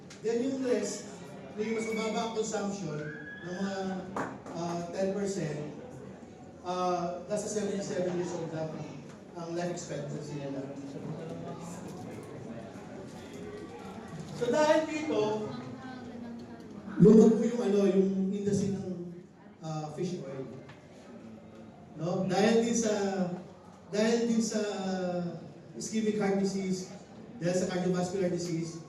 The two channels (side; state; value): both; identical; correlation 1.00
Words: Then yung rest, yung mas mababa ang consumption ng mga 10%, nasa 77 years old lang ang life expectancy nila. So dahil dito, lumago yung industry ng fish oil. No? Dahil din sa ischemic heart disease, dahil sa cardiovascular disease,